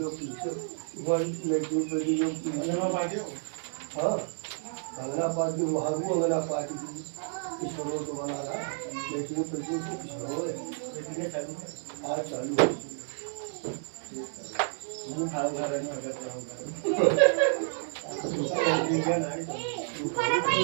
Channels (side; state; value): left; silent; digital silence